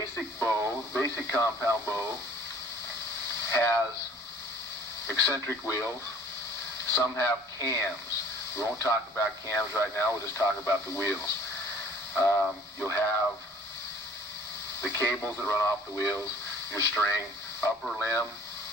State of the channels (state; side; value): normal; both; correlation 0.52